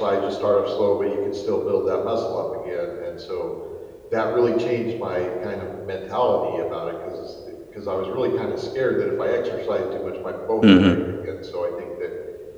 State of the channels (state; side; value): identical; both; correlation 1.00